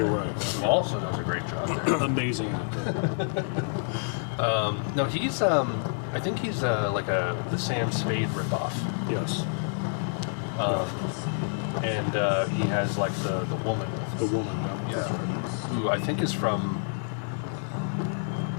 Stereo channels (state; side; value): silent; right; digital silence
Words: right. Who also does a great job there. Amazing actor. No, he's I think he's like the Sam Spade ripoff. Yes. And he has like the woman. The woman. Yeah. That's right. Who I think is from.